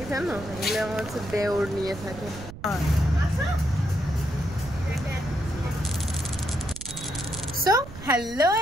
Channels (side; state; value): right; noise; rumble, 14 dB below the sound